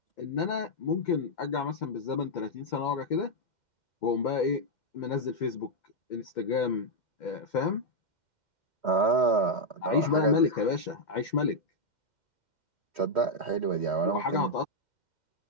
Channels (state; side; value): late; right; 2.1 ms